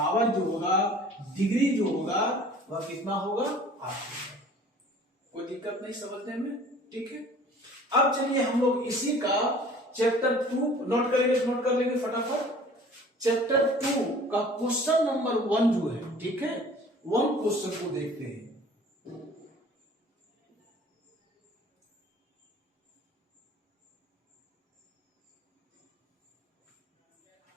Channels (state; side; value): normal; both; correlation 0.48